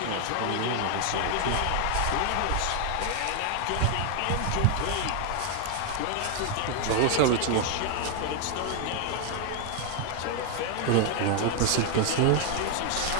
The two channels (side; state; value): both; different; correlation 0.00